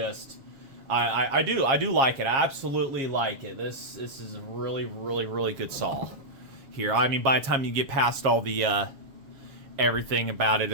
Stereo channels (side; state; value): left; late; 7.3 ms